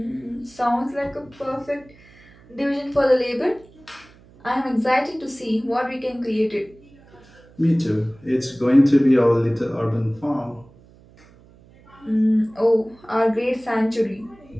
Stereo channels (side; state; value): right; noise; hum, 26 dB below the sound